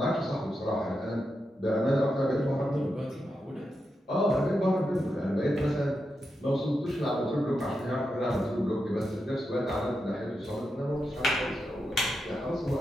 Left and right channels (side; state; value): both; normal; correlation 0.87